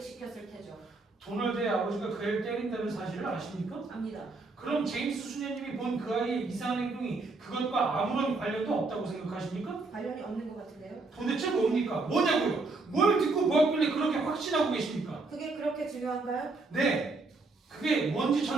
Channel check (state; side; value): quieter; left; 3.6 dB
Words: 테죠. 도널드의 아버지가 그 애를 때린다는 사실을 아십니까? 압니다. 그럼 제임스 수녀님이 본 그 아이의 이상한 행동이 그것과 아무런 관련도 없다고 생각하십니까? 관련이 없는 것 같은데요. 도대체 뭡니까? 뭐냐고요? 뭘 듣고 보았길래 그렇게 확신하고 계십니까? 그게 그렇게 중요한가요? 네, 그게 뭔지